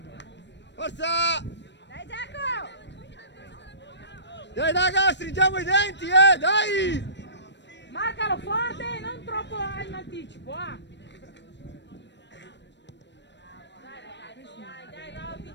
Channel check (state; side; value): late; right; 0.52 ms